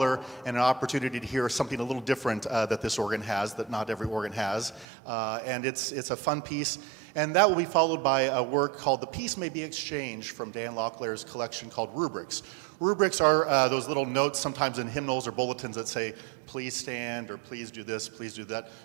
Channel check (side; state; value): left; drops out; at 4.9 s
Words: and an opportunity to hear something a little different that this organ has, that not every organ has. And it's a fun piece. And that will be followed by a work called The Peace May Be Exchanged from Dan Locklear's collection called Rubrics. Rubrics are those little notes sometimes in hymnals or bulletins that say, please stand, or please do this, please do that.